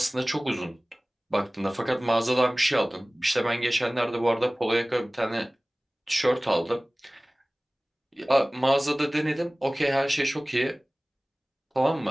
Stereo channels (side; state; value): both; normal; correlation 0.98